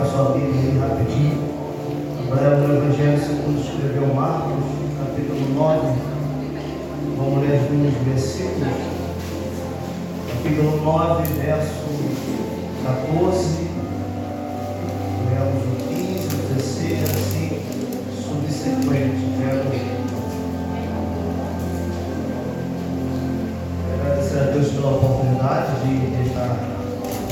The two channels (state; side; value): identical; both; correlation 1.00